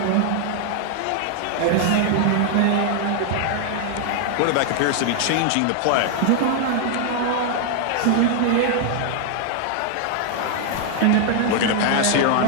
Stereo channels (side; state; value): both; different; correlation 0.00